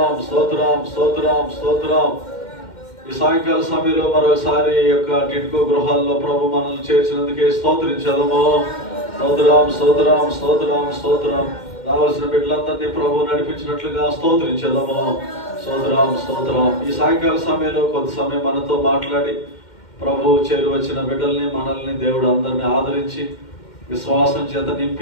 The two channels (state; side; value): late; right; 2.1 ms